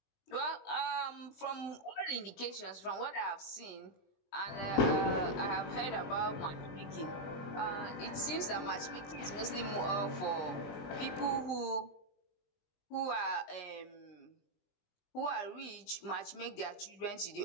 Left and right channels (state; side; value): late; right; 20 ms